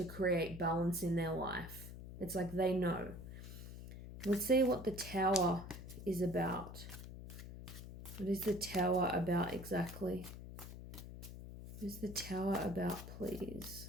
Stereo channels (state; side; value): noise; left; hum, 11 dB below the sound